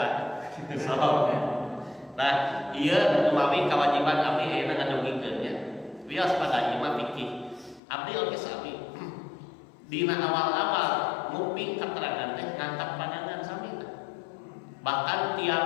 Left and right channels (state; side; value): drops out; right; at 7.8 s